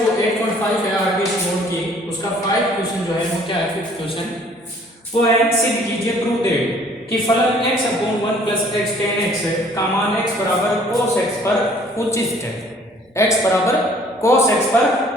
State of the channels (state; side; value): normal; both; correlation 0.57